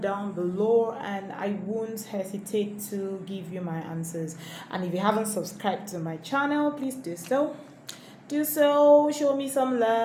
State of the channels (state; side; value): identical; both; correlation 1.00